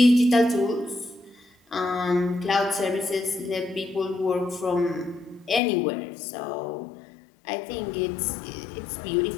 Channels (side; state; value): right; drops out; at 5.6 s